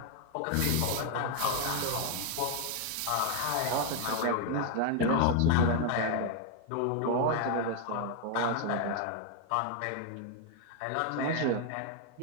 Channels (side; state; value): both; different; correlation 0.00